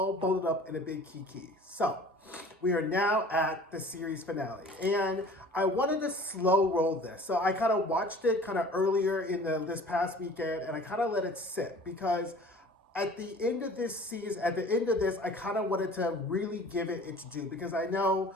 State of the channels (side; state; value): both; normal; correlation 0.46